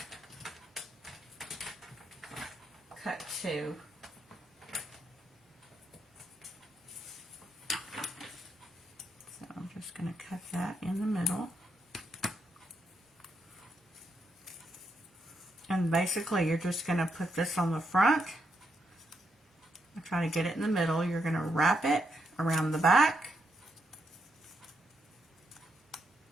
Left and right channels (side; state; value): both; normal; correlation 0.79